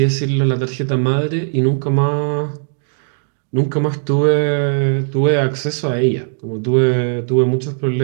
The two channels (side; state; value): left; silent; digital silence